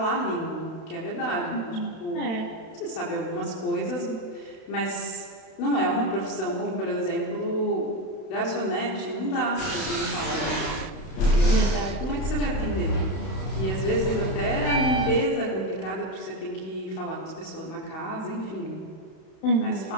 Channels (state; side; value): late; right; 32 ms